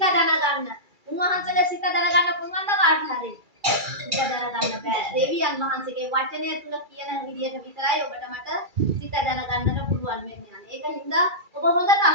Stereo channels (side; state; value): left; late; 2.3 ms